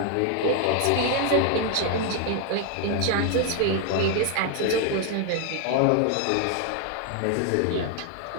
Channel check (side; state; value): both; different; correlation 0.01